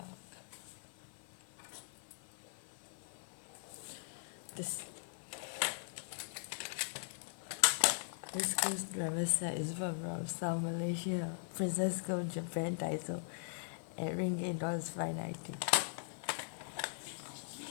This screwdriver set is from South Malaysia, Princess Gold Japan Daiso, at ringgit $5.90.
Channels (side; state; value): right; silent; 51 dB below the other